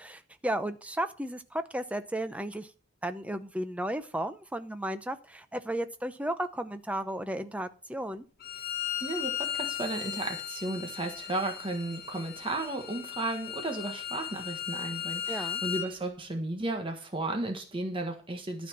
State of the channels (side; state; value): both; normal; correlation 0.49